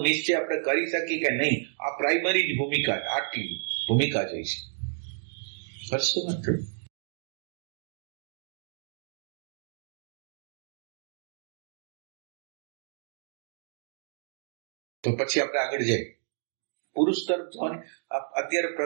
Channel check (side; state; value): left; silent; digital silence